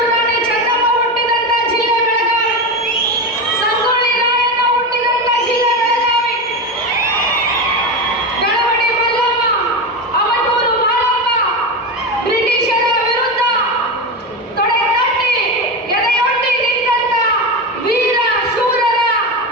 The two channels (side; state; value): both; normal; correlation 0.18